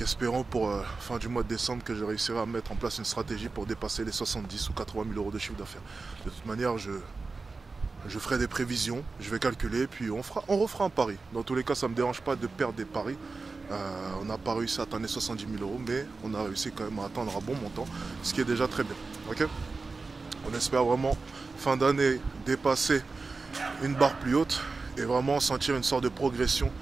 espérons pour fin du mois de décembre que je réussirai à mettre en place une stratégie pour dépasser les 70 ou 80 000 euros de chiffre d'affaires. De toute manière, je ferai des prévisions, je vais calculer, puis on refera un pari. Dans tous les cas, ça ne me dérange pas de perdre des paris. On n'a pas réussi à atteindre les 70 000 euros, mais on a réussi quand même à atteindre un bon montant, ce qui est déjà très bien. Okay, on espère vraiment, fin d'année, dépasser une barre plus haute et vraiment sentir une sorte de progression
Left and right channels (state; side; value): quieter; left; 4.0 dB